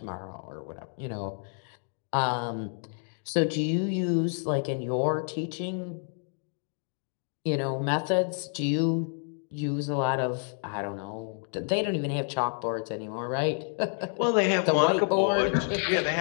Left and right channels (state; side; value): silent; right; 58 dB below the other